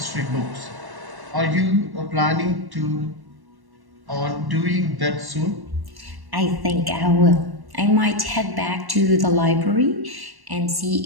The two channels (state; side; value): late; left; 1.1 ms